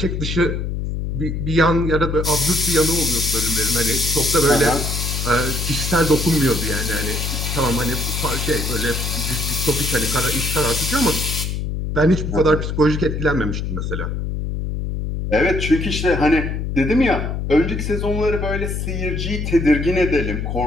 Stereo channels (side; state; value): left; noise; hum, 3 dB below the sound